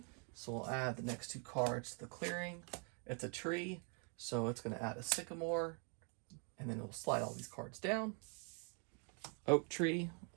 So we'll add the next 2 cards to the clearing. It's a tree. So it's going to add a sycamore, and then it'll slide all these cards down. Oak tree,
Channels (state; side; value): quieter; left; 37.9 dB